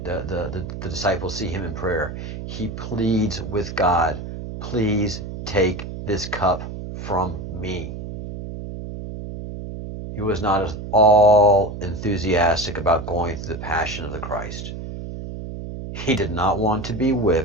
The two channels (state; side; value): noise; right; hum, 8 dB below the sound